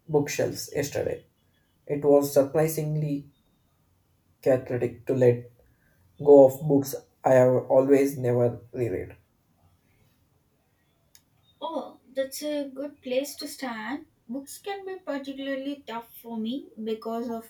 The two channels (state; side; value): identical; both; correlation 1.00